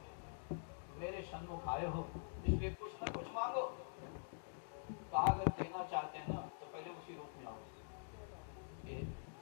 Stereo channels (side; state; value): right; silent; digital silence